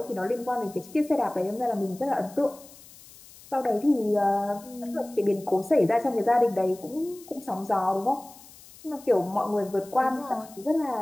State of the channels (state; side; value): noise; left; hiss, 21 dB below the sound